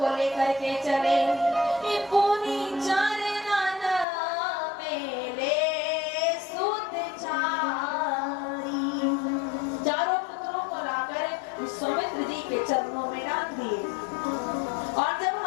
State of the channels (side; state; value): right; drops out; at 4.0 s